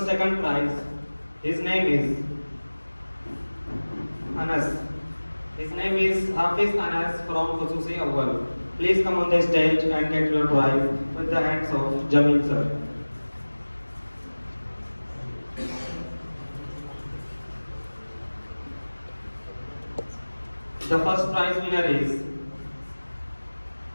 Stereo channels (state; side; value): inverted; both; correlation -1.00